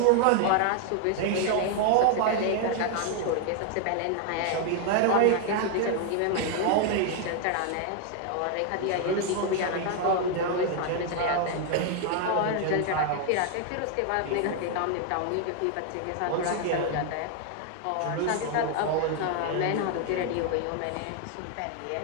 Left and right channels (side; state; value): both; different; correlation 0.00